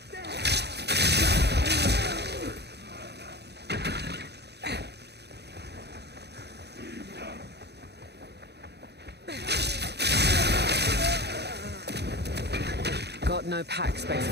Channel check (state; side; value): late; left; 0.48 ms